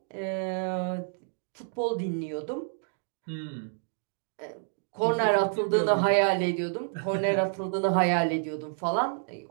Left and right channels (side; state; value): left; silent; digital silence